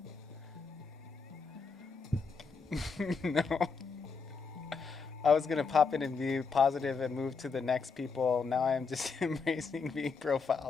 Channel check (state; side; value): quieter; right; 5.1 dB